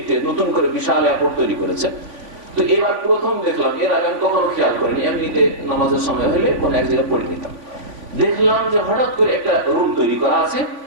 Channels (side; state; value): left; late; 3.5 ms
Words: নতুন করে বিশাল এয়ারপোর্ট তৈরি করেছে, তো এবার প্রথম দেখলাম, এর আগে আমি কখনো খেয়াল করিনি, এমনিতে নামাজের সময় হলে কোনো এক জায়গায় পড়ে নিতাম। দেখলাম যে হঠাৎ করে একটা রুম তৈরি করা আছে,